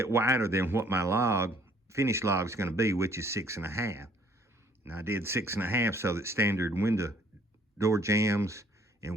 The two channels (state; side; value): normal; both; correlation 0.61